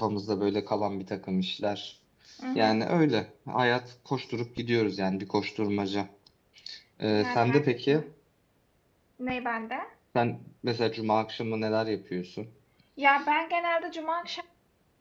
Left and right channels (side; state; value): both; identical; correlation 1.00